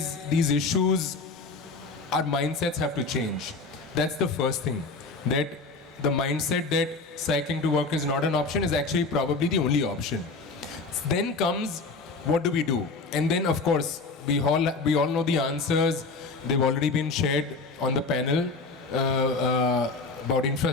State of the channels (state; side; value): quieter; right; 3.9 dB